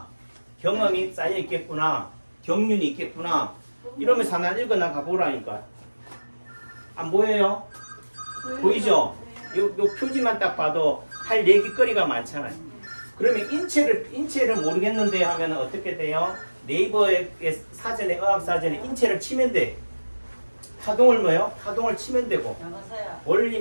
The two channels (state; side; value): inverted; both; correlation -1.00